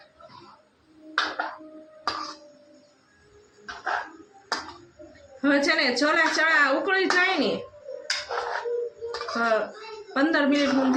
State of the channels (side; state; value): both; identical; correlation 1.00